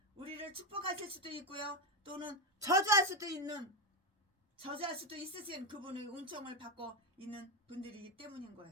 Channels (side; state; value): both; normal; correlation 0.09